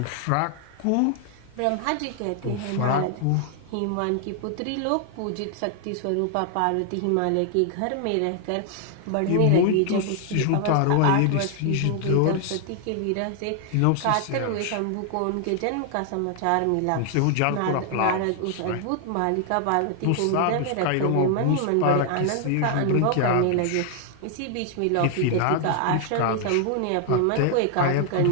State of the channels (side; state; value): both; different; correlation 0.00